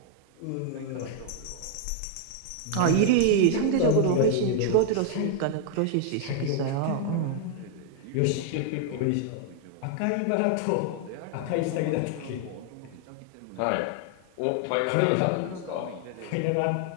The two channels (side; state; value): both; different; correlation 0.00